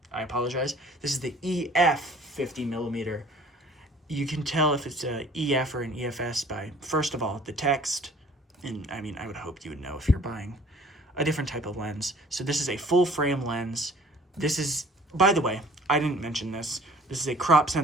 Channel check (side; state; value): both; normal; correlation 0.52